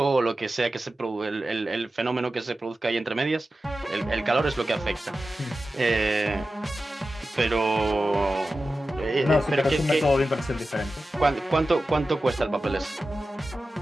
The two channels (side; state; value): both; normal; correlation 0.93